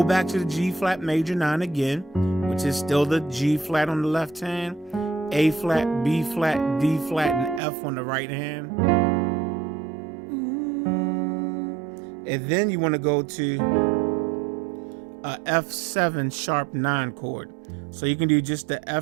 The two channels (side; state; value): left; drops out; at 7.6 s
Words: back to the G flat major 9 again, which is still the G flat on the left hand, A flat, B flat, D flat, and F on the right hand. And then you want to go to a F7 sharp 9 chord. So you can do just the